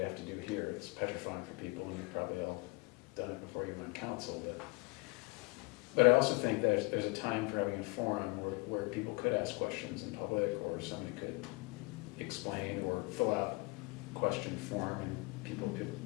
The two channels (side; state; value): right; quieter; 26.7 dB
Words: have to do here, it's petrifying for people, and you've probably all done it before you were on council, but I also think there's a time for having a forum where people could ask questions in public, or somebody could explain or fill out question form, and people